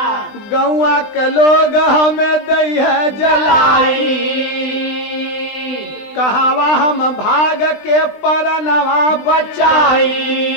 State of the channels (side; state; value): right; late; 20 ms